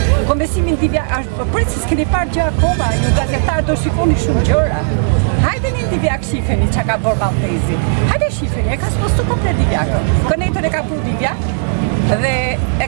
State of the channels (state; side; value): silent; left; digital silence